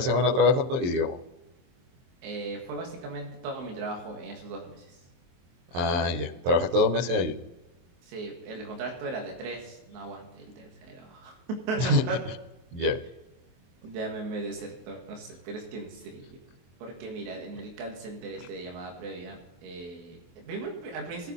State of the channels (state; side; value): late; left; 23 ms